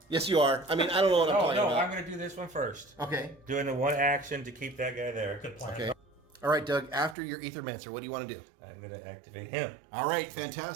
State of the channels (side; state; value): left; drops out; at 7.2 s